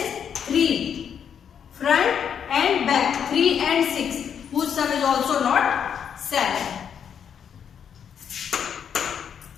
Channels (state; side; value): quieter; right; 8.0 dB